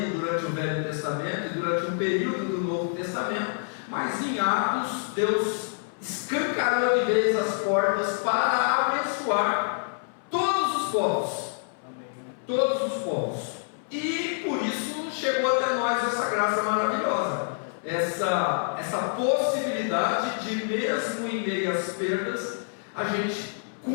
durante o Velho Testamento e durante um período do Novo Testamento. Mas em Atos, Deus escancarou de vez as portas para abençoar todos os povos. Todos os povos. E por isso chegou até nós essa graça maravilhosa. Essa possibilidade de, mesmo em meio às perdas, a gente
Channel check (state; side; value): silent; right; 60 dB below the other